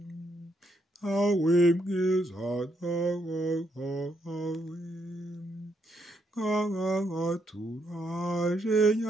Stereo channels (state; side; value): normal; both; correlation 0.76